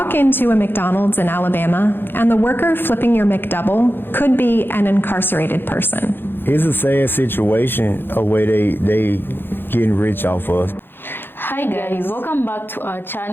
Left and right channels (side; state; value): right; late; 0.10 ms